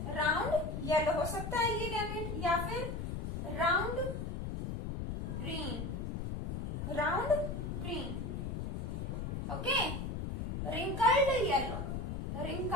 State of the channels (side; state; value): left; noise; rumble, 3 dB below the sound